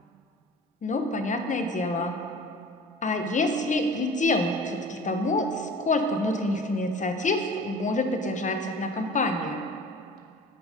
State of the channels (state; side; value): normal; both; correlation 0.42